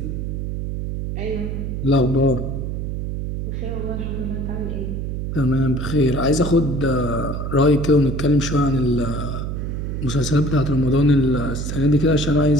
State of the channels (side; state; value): right; noise; hum, 3 dB below the sound